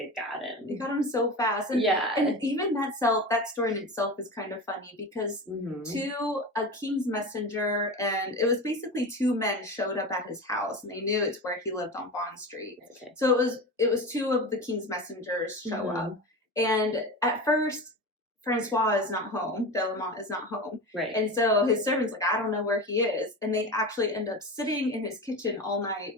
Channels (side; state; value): both; normal; correlation 0.27